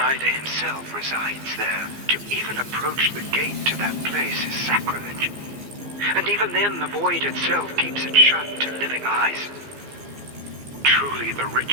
himself resides there. To even approach the gate to that place is sacrilege. And even then, the void itself keeps it shut to living eyes. Truly, the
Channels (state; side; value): late; left; 15 ms